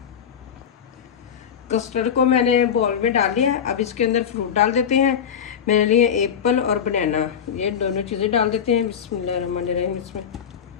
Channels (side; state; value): right; quieter; 8.0 dB